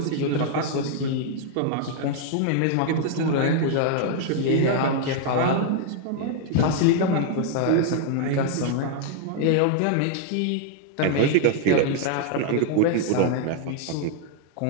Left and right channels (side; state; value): both; different; correlation 0.00